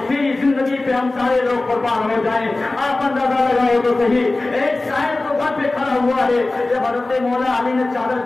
तेरी जिंदगी पे हम सारे लोग कुर्बान हो जाएं, आप अंदाजा लगाओ तो सही। एक शायर तो घर पे खड़ा हुआ है, जब हजरत मौला अली ने चादर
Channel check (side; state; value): right; quieter; 3.0 dB